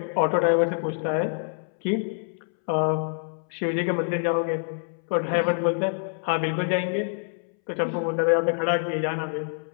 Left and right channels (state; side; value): silent; right; 61 dB below the other